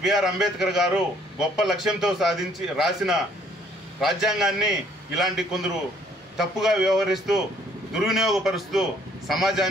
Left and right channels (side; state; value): both; normal; correlation 0.63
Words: బిఆర్ అంబేద్కర్ గారు గొప్ప లక్ష్యంతో రాసిన రాజ్యాంగాన్ని ఇలాంటి కొందరు తప్పుగా వ్యవహరిస్తూ దుర్వినియోగపరుస్తూ